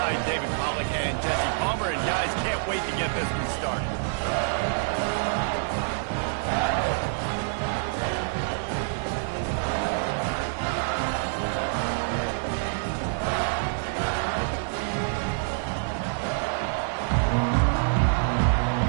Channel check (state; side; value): silent; left; digital silence